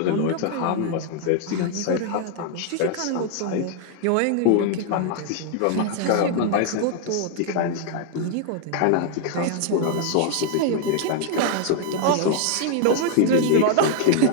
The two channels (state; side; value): different; both; correlation 0.00